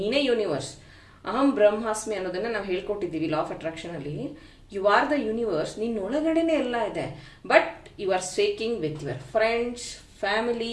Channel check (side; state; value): both; identical; correlation 1.00